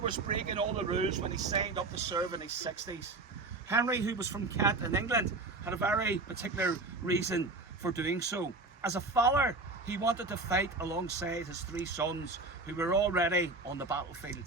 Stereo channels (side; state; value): left; quieter; 3.3 dB